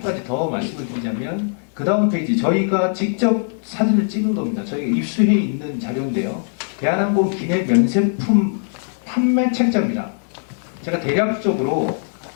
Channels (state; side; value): silent; right; 64 dB below the other